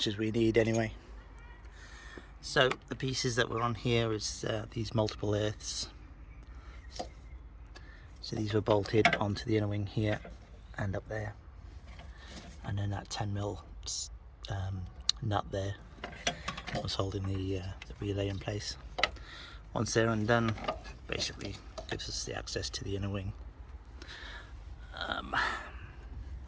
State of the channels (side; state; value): both; identical; correlation 1.00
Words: as we need anyway. So the pieces that were on here is these multiple earths. So these were bolted onto the inner wing here and up there, and then that 10mm nut there was holding the relay in place. Once they're undone, basically gives us the access to the inner wing.